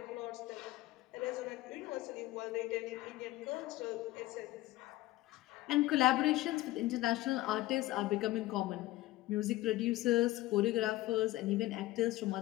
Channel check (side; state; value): right; quieter; 17.2 dB